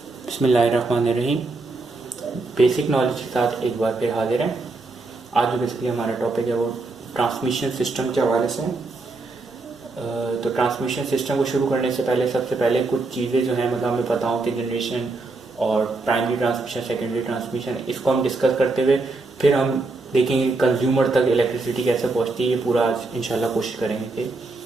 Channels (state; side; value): quieter; left; 3.5 dB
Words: बिस्मिल्लाहिर्रहमानिर्रहीम। Basic knowledge के साथ एक बार फिर हाजिर हैं। आज जो बेसिकली हमारा टॉपिक है वो ट्रांसमिशन सिस्टम के हवाले से है। तो ट्रांसमिशन सिस्टम को शुरू करने से पहले सबसे पहले कुछ चीज़ें जो हैं मतलब हमें पता हो कि जनरेशन और प्राइमरी ट्रांसमिशन, सेकेंडरी ट्रांसमिशन, इसको हम डिस्कस करते हुए फिर हम देखेंगे कंज्यूमर तक इलेक्ट्रिसिटी कैसे पहुँचती है। ये पूरा आज इंशाल्लाह कोशिश करेंगे कि